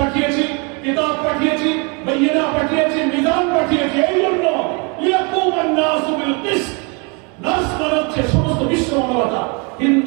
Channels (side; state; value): left; quieter; 32.0 dB